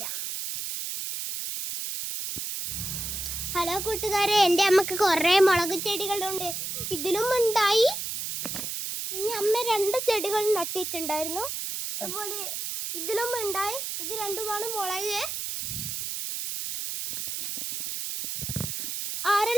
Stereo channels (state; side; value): noise; right; hiss, 4 dB below the sound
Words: ഹലോ കൂട്ടുകാരെ, എൻ്റെ അമ്മക്ക് കുറെ മുളക് ചെടികളുണ്ട്. ഇതിലും ഉണ്ടായി. പിന്നെ അമ്മ 2 ചെടികൾ നട്ടിട്ടുണ്ടായിരുന്നു. അതുപോലെ ഇതിലും ഉണ്ടായി. ഇത് 2മാണ് മുളക്.